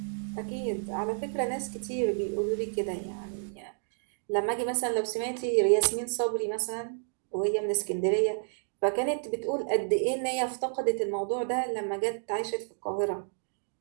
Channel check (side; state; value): left; silent; digital silence